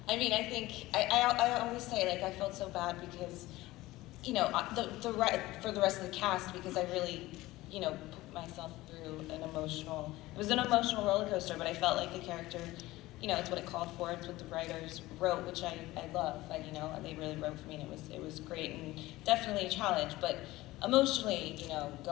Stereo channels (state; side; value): quieter; right; 18.2 dB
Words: mean, I think, I always say, I felt so bad because, for the rest of the cast, because I really, put myself through it was an emotional roller coaster, but I felt like the character, it's what it called for, it's what the writers wrote, which I love, they really wrote for me, and it was great, and definitely a challenge, but emotionally,